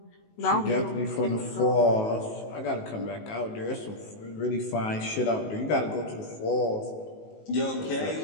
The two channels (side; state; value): right; late; 19 ms